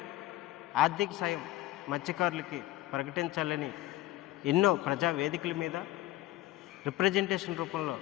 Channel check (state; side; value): quieter; right; 16.2 dB